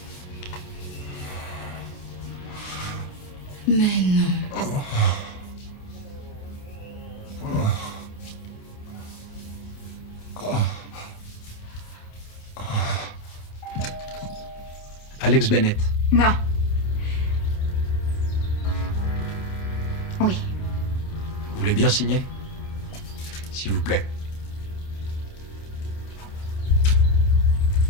Mais non. Alex Bennett. Non. Oui. Vous voulez bien signer? S'il vous plaît.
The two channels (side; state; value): right; late; 28 ms